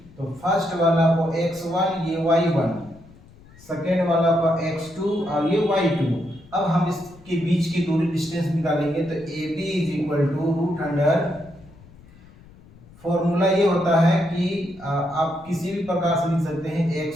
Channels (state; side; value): noise; left; rumble, 23 dB below the sound